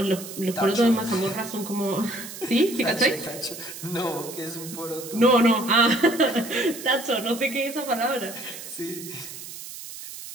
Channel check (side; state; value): right; noise; hiss, 12 dB below the sound